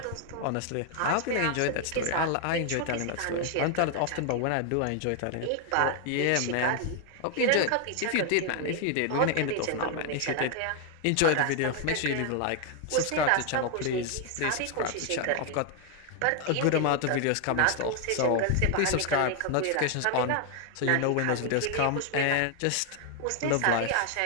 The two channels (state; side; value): different; both; correlation 0.00